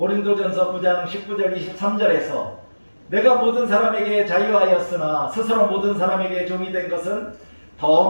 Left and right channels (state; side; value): inverted; both; correlation -1.00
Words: 9장 19절 23절에서 내가 모든 사람에게 자유하였으나 스스로 모든 사람에게 종이 된 것은 더